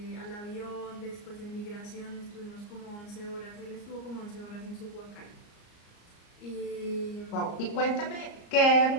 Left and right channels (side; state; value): right; late; 34 ms